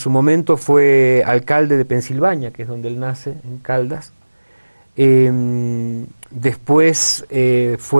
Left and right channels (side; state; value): both; inverted; correlation -1.00